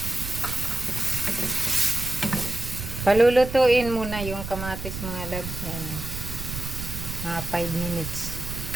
Palulutuin muna yung kamatis mga loves. Yan. Mga 5 minutes.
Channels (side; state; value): right; noise; rumble, 7 dB below the sound